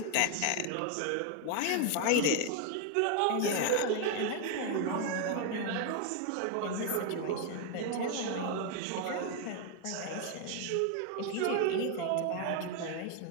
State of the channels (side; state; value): both; different; correlation 0.00